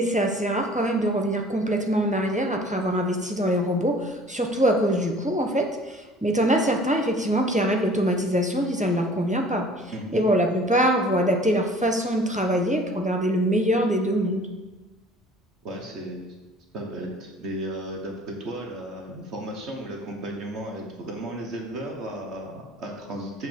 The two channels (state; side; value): normal; both; correlation 0.50